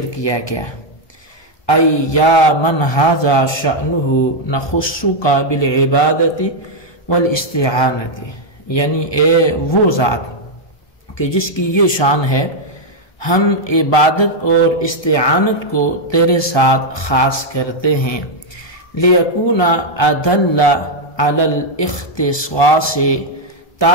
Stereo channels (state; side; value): late; right; 1.2 ms